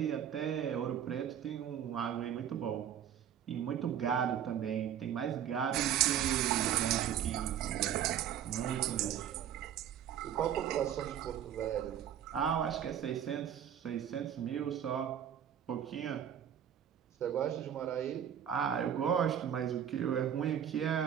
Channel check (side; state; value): left; quieter; 9.6 dB